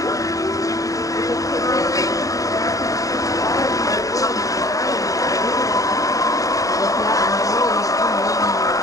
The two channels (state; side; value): late; right; 0.16 ms